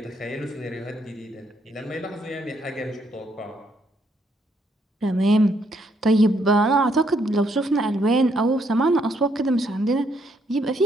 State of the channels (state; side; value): normal; both; correlation 0.73